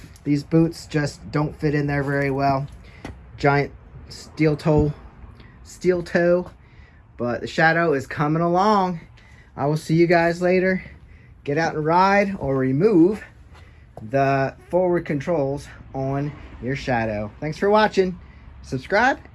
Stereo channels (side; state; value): both; identical; correlation 1.00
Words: These boots just don't fit in there very well. Giant steel toe, but the Shadow is coming along. I will see you guys later. Get out and ride, or remove the forward controls on your Shadow. Thanks for watching. Subscribe,